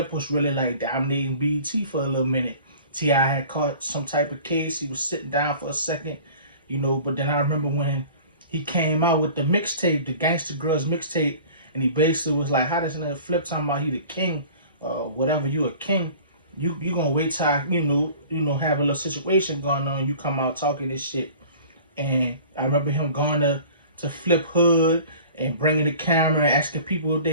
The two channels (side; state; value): both; inverted; correlation -0.44